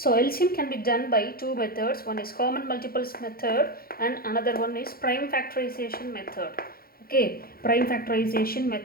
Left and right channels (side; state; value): right; late; 0.43 ms